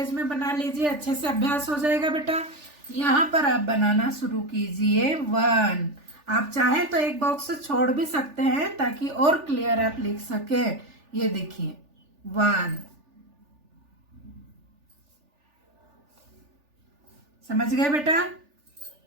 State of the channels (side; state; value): left; late; 3.4 ms